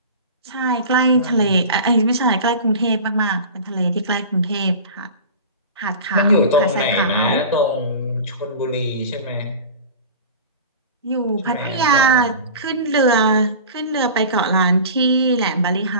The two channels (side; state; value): both; inverted; correlation -0.35